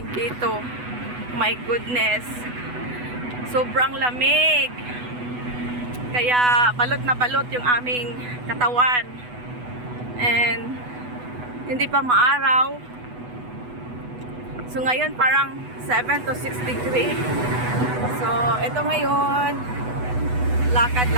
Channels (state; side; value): late; left; 8.1 ms